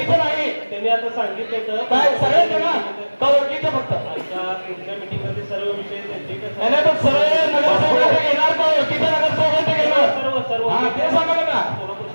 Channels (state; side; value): inverted; both; correlation -1.00